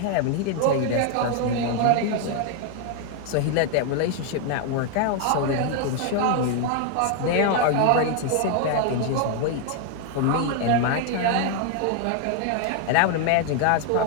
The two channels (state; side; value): different; both; correlation 0.00